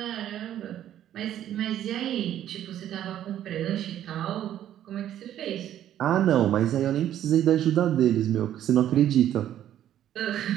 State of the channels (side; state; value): left; quieter; 11.4 dB